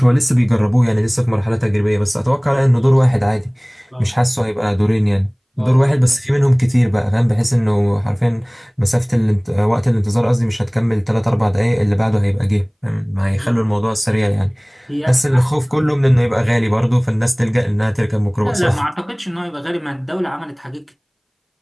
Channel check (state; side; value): identical; both; correlation 1.00